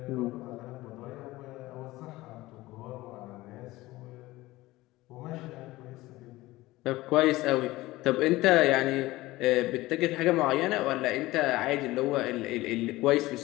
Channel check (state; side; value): quieter; right; 18.6 dB